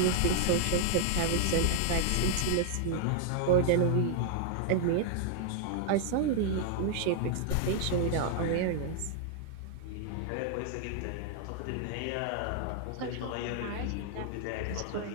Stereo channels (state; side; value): different; both; correlation 0.00